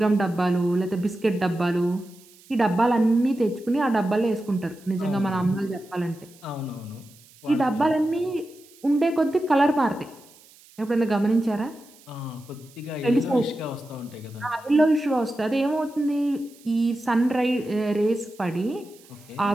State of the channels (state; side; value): noise; right; hiss, 26 dB below the sound